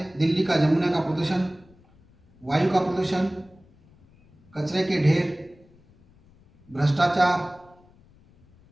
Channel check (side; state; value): left; noise; rumble, 29 dB below the sound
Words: दिल्ली का जमुना का प्रदूषण, वायु का प्रदूषण, कचरे के ढेर, भ्रष्टाचार,